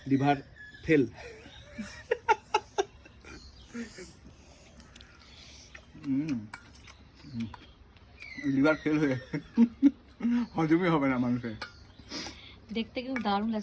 লিভার ফেল। লিভার ফেল হয়ে হজমই হবে না মানুষের। দেখতে কিন্তু দারুণ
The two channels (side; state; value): both; identical; correlation 1.00